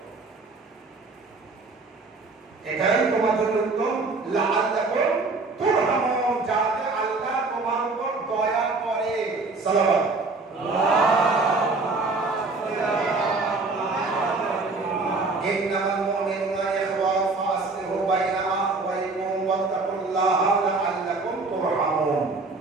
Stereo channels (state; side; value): quieter; left; 3.7 dB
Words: এটাই তোমার জন্য উত্তম। লাআল্লাকুম তুরহামুন, যাতে আল্লাহ তোমার উপর দয়া করে। সালাওয়াত। ইন্নামাল মুমিনুনা ইখওয়া ফাসলিহু বাইনা আখওয়াইকুম ওয়াত্তাকুল্লাহ লাআল্লাকুম তুরহামুন।